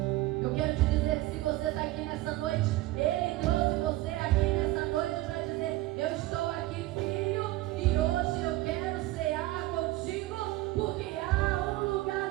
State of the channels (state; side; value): quieter; left; 17.6 dB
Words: Eu quero te dizer que se você está aqui nessa noite, Ele trouxe você aqui nessa noite para dizer, eu estou aqui, filho, e hoje eu quero cear contigo, porque há um lugar